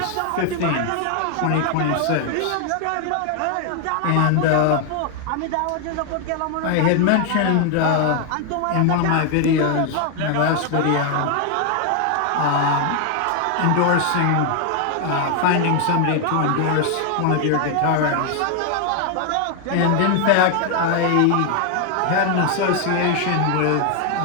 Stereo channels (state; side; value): different; both; correlation 0.00